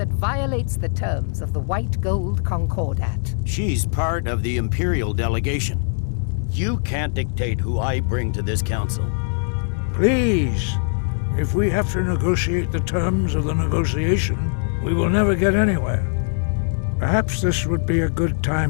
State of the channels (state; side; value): silent; right; digital silence